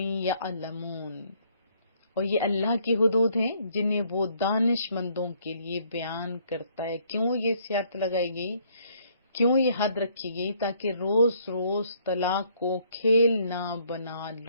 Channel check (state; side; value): inverted; both; correlation -0.66